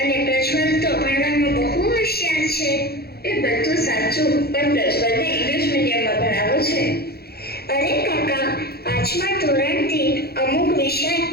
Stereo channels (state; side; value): late; right; 0.46 ms